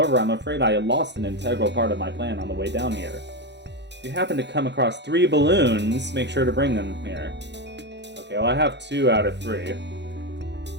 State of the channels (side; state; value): left; late; 0.51 ms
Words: I'm afraid I lost an integral part of my plan on the way down here. If you happen to come across 3 balloons, make sure to bring them here. Okay, well I have 2 out of 3.